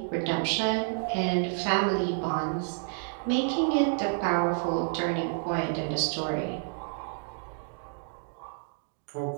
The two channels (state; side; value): silent; left; 58 dB below the other